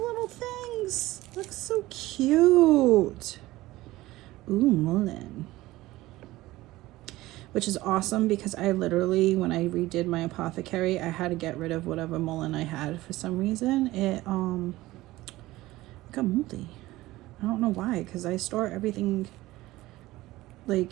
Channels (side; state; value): left; quieter; 17.8 dB